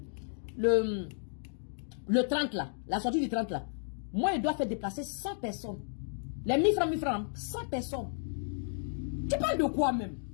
le 30 là, la sortie du 30 là. Moi, il doit faire déplacer 100 personnes. Les 1000 francs, 100 personnes. Tu parles de quoi même?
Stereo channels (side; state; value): right; silent; digital silence